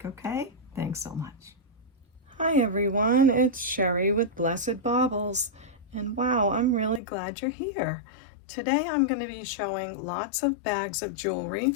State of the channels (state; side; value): drops out; right; at 7.0 s